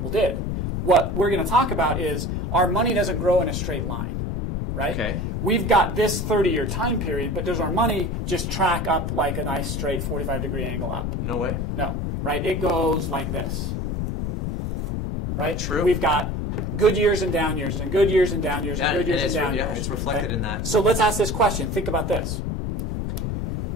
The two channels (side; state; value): left; noise; rumble, 1 dB below the sound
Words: did. What we're going to talk about is our money doesn't grow in a straight line, right? Okay. We've got this 30-year time period, but does our money just track up like a nice straight 45-degree angle up? No way. No, right? It goes like this, right? True. We've got good years and down years, and good years and down years, and good years and down years. Yeah, it's reflected in that. So let's ask this question. Think about this.